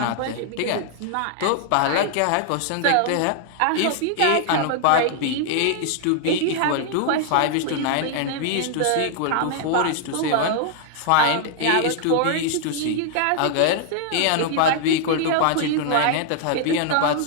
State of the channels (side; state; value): both; different; correlation 0.00